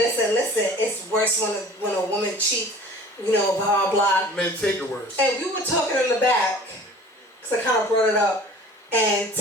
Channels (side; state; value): both; normal; correlation 0.45